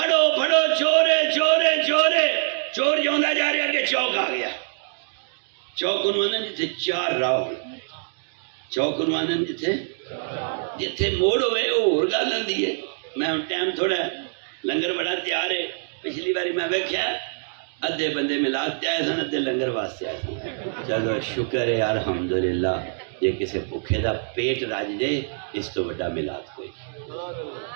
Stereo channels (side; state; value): left; silent; digital silence